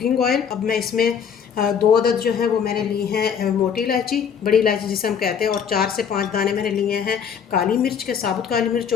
ऑयल। अब मैं इसमें 2 अदद जो है वो मैंने ली हैं मोटी इलायची, बड़ी इलायची जिसे हम कहते हैं, और 4 से 5 दाने मैंने लिए हैं काली मिर्च के, साबुत काली मिर्च,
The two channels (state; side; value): quieter; right; 7.4 dB